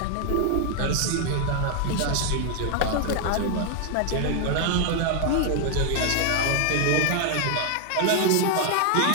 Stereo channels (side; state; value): both; different; correlation 0.00